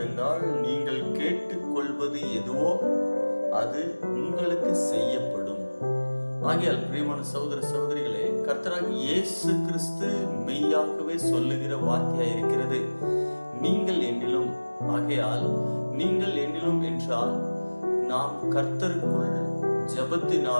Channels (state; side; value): inverted; both; correlation -1.00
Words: நீங்கள் கேட்டுக்கொள்வது எதுவோ அது உங்களுக்கு செய்யப்படும். ஆகையால் பிரியமான சகோதர சகோதரிகளே, கர்த்தராகிய இயேசு கிறிஸ்து மெய்யாகவே சொல்லுகிற வார்த்தையாய் இருக்கிறது. நீங்கள் என்னிலும். ஆகையால் நீங்கள் என்னிலும் என்றால் நாம் கர்த்தருக்குள்